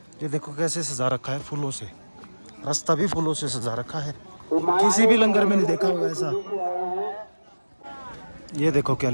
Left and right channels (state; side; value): inverted; both; correlation -1.00